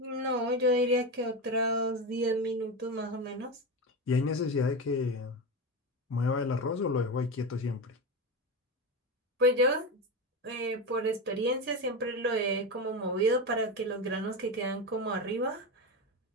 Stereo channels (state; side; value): normal; both; correlation 0.18